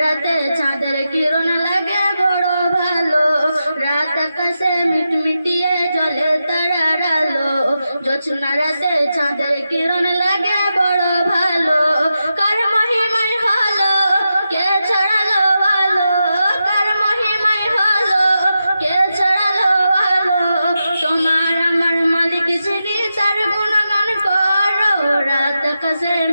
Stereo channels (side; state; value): both; inverted; correlation -0.88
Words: রাতে চাঁদের কিরণ লাগে বড় ভালো। রাত আকাশে মিটমিটিয়ে জ্বলে তারার আলো, জোছনা রাতে চাঁদের কিরণ লাগে বড় ভালো। কার মহিমায় হলো কে ছড়ালো আলো, কার মহিমায় হলো কে ছড়ালো আলো। তোমার আমার মালিক যিনি তার গুণগান করো। রাত আকাশে